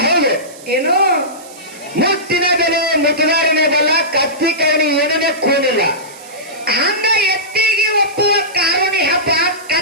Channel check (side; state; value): right; noise; hiss, 20 dB below the sound